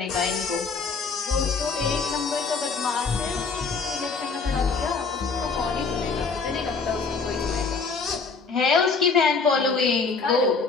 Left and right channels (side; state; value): right; quieter; 4.7 dB